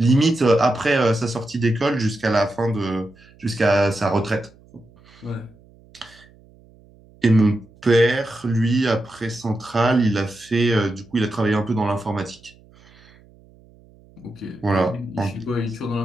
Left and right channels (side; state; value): right; noise; hum, 27 dB below the sound